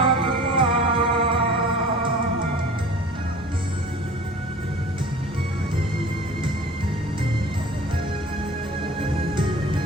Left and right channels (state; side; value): normal; both; correlation 0.43